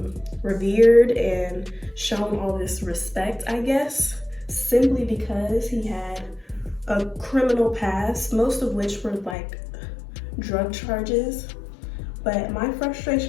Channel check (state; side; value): drops out; right; at 9.3 s